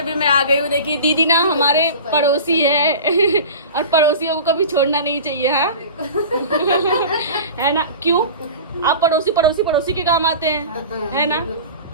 मैं आ गई हूँ। देखिए दीदी ना हमारे पड़ोसी है और पड़ोसियों को कभी छोड़ना नहीं चाहिए, है ना? क्यों आप पड़ोसी के काम आते हैं, है ना?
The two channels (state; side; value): inverted; both; correlation -0.36